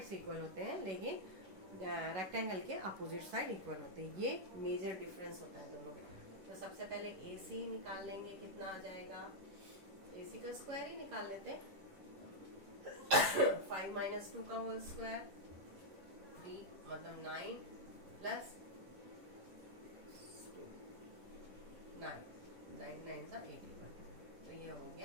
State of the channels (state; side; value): late; left; 10 ms